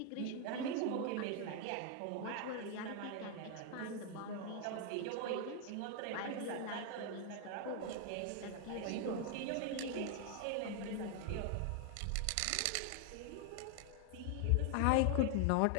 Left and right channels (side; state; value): both; different; correlation 0.00